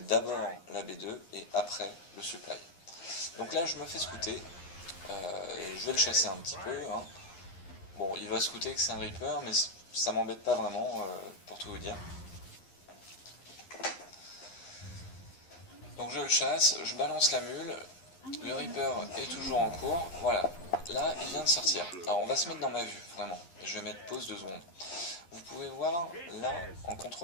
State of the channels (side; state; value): right; late; 11 ms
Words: la B2 et après le supply. Donc là je me fais scouter, je vais le chasser un petit peu, hein. Bon il va scouter que c'est un Reaper mais ça m'embête pas vraiment pour tout vous dire. Donc je le chasse, je balance la mule, le Reaper est toujours en cours, voilà, là il vient de sortir. Alors on va se mettre dans ma vue, vraiment, je vais mettre pause 2 secondes. Vous pouvez voir, là en